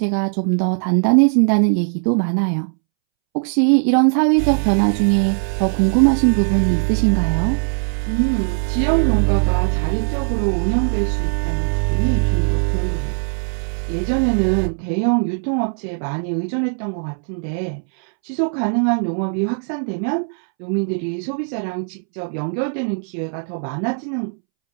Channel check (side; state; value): left; silent; 66 dB below the other